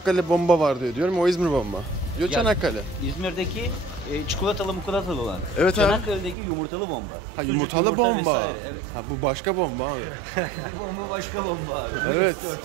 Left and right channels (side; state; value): left; drops out; at 6.4 s